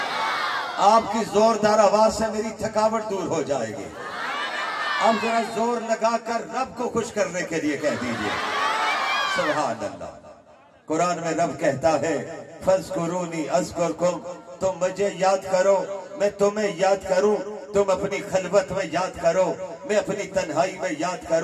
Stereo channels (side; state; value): both; identical; correlation 1.00